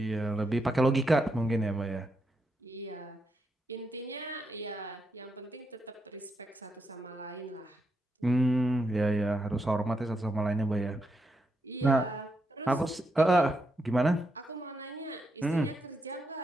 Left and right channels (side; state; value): both; normal; correlation 0.82